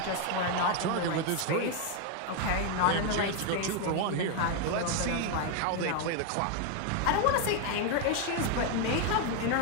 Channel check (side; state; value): both; different; correlation 0.01